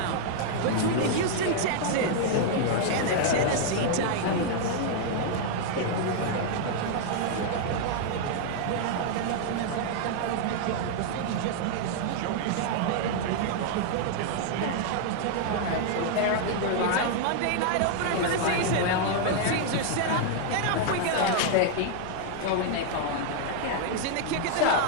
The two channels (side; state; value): both; different; correlation -0.01